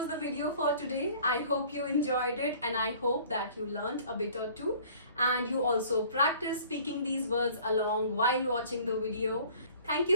the video for today. I hope you enjoyed it, and I hope that you learned a bit or two and you also practice speaking these words along while watching the video. Thank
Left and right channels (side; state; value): both; inverted; correlation -0.51